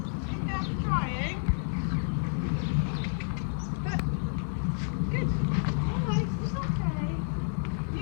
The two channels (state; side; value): silent; right; 58 dB below the other